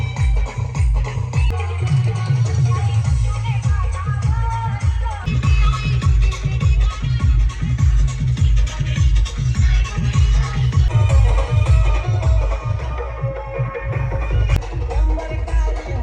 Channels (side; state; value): both; identical; correlation 1.00